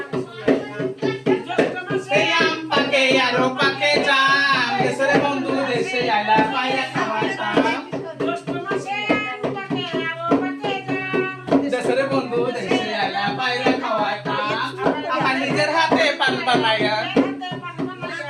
সেই আম পাকে আরো পাকে জাম দেশের বন্ধু দেশে আইলা পাইয়া খাওয়াইতাম দেশের বন্ধু দেশে আইলা পাইয়া খাওয়াইতাম আমার নিজের হাতে পান বানাইয়া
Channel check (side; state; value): both; identical; correlation 1.00